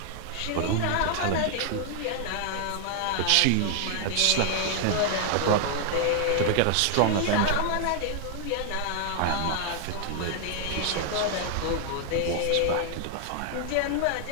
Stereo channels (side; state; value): both; different; correlation 0.00